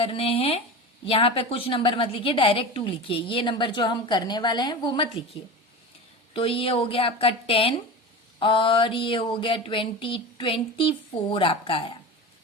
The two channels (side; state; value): both; normal; correlation 0.29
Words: हैं। यहाँ पे कुछ नंबर मत लिखिए, डायरेक्ट 2 लिखिए। ये नंबर जो हम करने वाले हैं वो मत लिखिए। तो ये हो गया आपका 10 और ये हो गया 24 आपका आया।